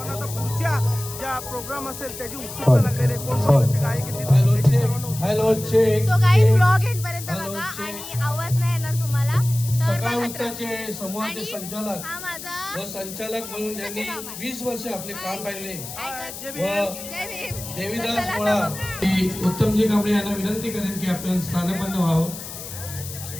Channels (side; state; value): left; noise; hiss, 11 dB below the sound